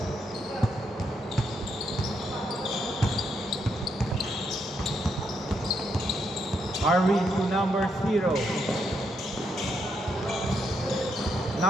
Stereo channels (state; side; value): normal; both; correlation 0.78